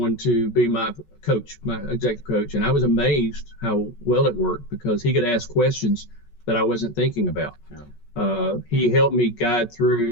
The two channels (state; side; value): late; right; 14 ms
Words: to be my coach, my executive coach, and I was amazed how well it worked because he could ask questions that I wasn't thinking about. He helped me guide